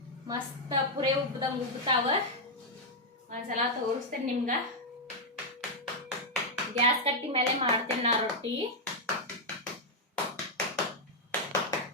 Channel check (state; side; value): normal; both; correlation -0.02